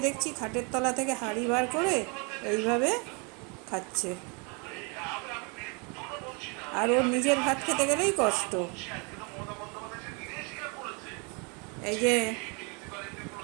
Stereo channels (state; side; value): quieter; left; 33.0 dB